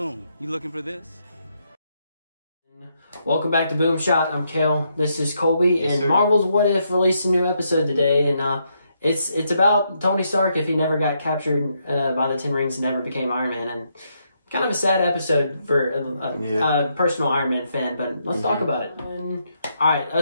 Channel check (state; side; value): inverted; both; correlation -0.78